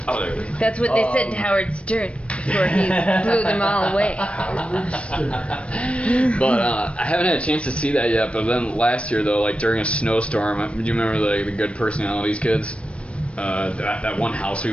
Oh, there it is. That's what they said to Howard Stern before he blew them all away. But I haven't had a chance to see that yet. But then last year, though, like during a snowstorm, do you remember the Good Personalities kids? That one house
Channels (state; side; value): late; right; 0.061 ms